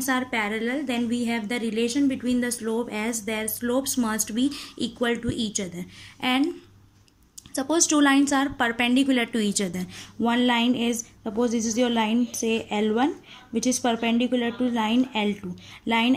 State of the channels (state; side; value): identical; both; correlation 1.00